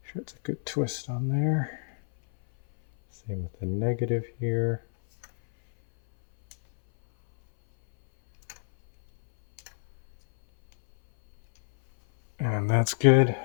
Sure it's a good twist on there. Same with the negative here. And that's good.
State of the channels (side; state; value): right; silent; 60 dB below the other